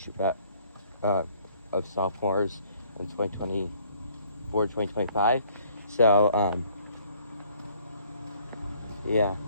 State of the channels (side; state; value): both; inverted; correlation -0.61